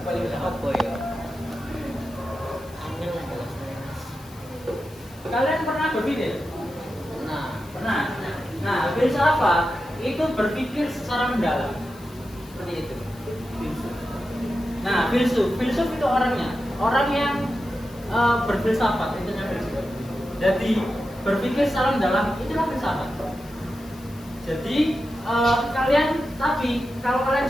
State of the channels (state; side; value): noise; left; hiss, 24 dB below the sound